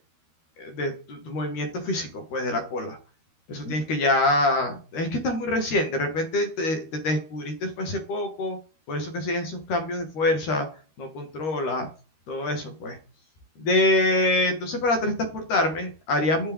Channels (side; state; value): right; late; 13 ms